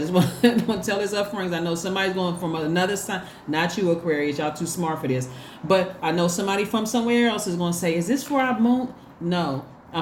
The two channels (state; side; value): identical; both; correlation 1.00